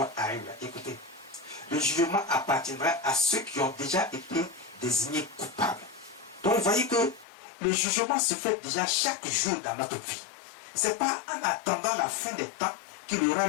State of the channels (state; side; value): drops out; right; at 7.2 s